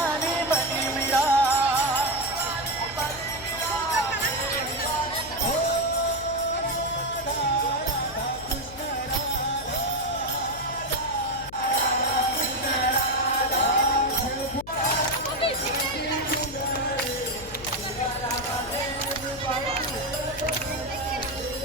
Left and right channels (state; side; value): noise; left; hum, 16 dB below the sound